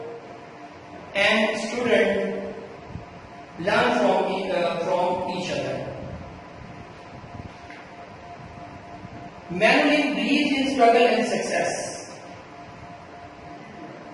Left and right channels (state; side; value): identical; both; correlation 1.00